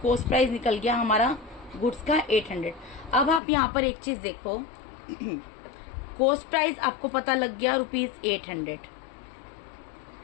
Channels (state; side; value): drops out; right; at 3.4 s